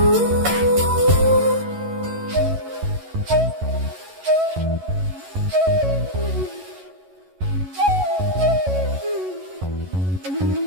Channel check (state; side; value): late; left; 11 ms